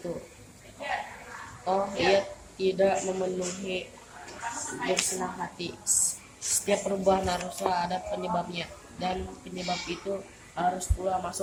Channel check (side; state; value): both; identical; correlation 1.00